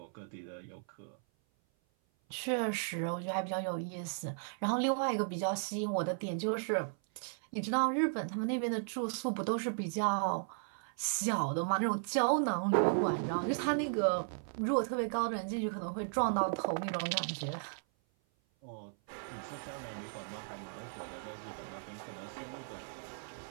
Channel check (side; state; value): left; silent; 54 dB below the other